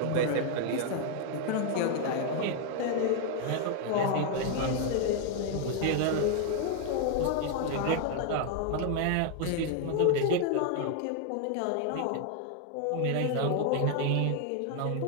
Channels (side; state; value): both; different; correlation 0.00